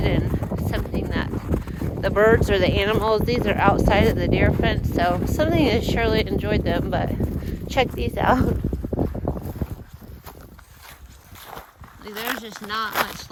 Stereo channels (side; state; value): both; identical; correlation 1.00